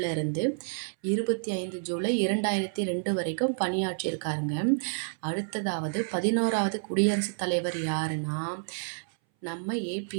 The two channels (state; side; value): silent; left; 58 dB below the other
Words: 25 ஜூலை 2002 வரைக்கும் பணியாற்றியிருக்காருங்க. அடுத்ததாவது 11வது குடியரசுத் தலைவர் யாருன்னா நம்ம